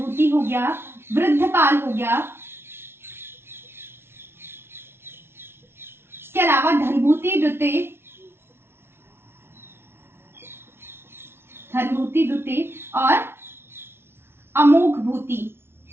हो गया, वृद्धपाल हो गया। इसके अलावा धनभूति द्वितीय, धनभूति द्वितीय और अमोघ भूति,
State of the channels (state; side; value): late; left; 0.12 ms